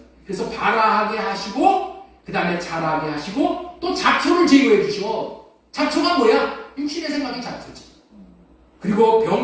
그래서 발아하게 하시고 그 다음에 자라게 하시고 또 잡초를 제거해 주셔. 잡초가 뭐야? 육신의 생각이 잡초지. 그리고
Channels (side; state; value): both; identical; correlation 1.00